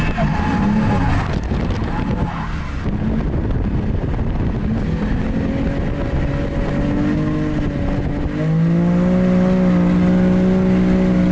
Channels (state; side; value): identical; both; correlation 1.00